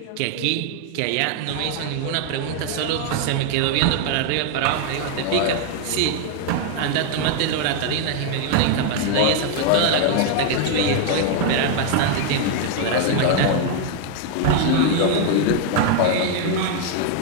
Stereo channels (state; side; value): different; both; correlation 0.01